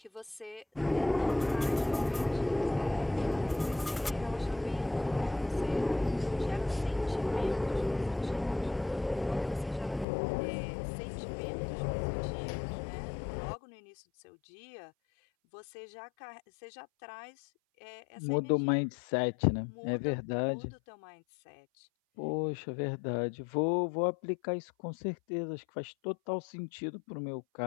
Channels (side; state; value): right; drops out; at 10.1 s